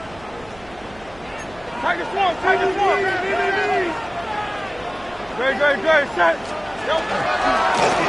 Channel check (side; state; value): right; noise; hum, 23 dB below the sound